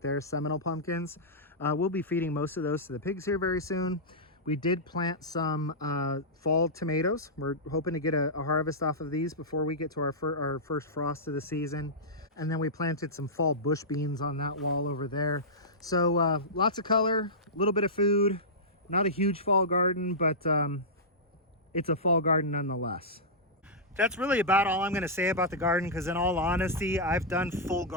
Seminole pumpkins. We'll be feeding most of those to the pigs here very soon. We did plant some fall tomatoes. We're hoping to get a harvest off of these before we get to our first frost of the season. And then we planted some fall bush beans on that wall over there. So lots of color, a little bit of food. Not a huge fall garden, but it's a fall garden nonetheless. That's really about all I'm going to say about the garden, because in all honesty, I've done full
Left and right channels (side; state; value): both; normal; correlation -0.13